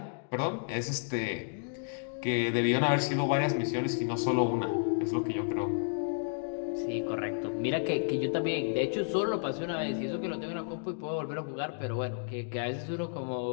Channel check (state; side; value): silent; right; digital silence